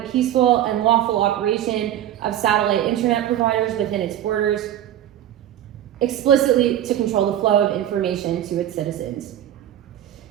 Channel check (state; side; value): quieter; left; 11.8 dB